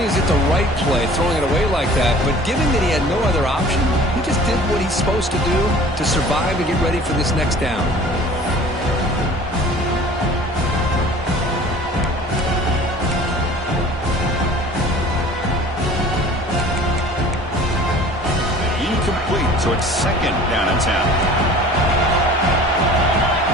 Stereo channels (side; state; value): both; normal; correlation 0.46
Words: is it the right play, throwing it away like that, but given that he had no other option, he just did what he's supposed to do to survive and get ready for this next down. So it's 2nd down and 10.